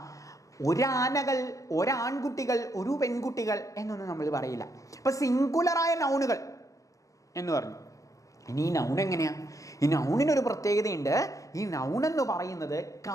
ഒരാനകൾ, ഒരാൺകുട്ടികൾ, ഒരു പെൺകുട്ടികൾ എന്നൊന്നും നമ്മൾ പറയില്ല. അപ്പൊ സിംഗുലറായ നൗണുകൾ എന്ന് പറഞ്ഞു. ഇനി ഈ നൗൺ എങ്ങനെയാ? ഈ നൗണിനൊരു പ്രത്യേകതയുണ്ട്. ഈ നൗൺ എന്ന് പറയുന്നത്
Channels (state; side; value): late; right; 0.16 ms